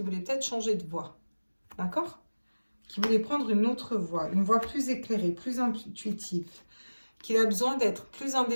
voulait peut-être changer de voie. D'accord? Qu'il voulait prendre une autre voie, une voie plus éclairée, plus intuitive. Qu'il a besoin d'être plus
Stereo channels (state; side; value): inverted; both; correlation -1.00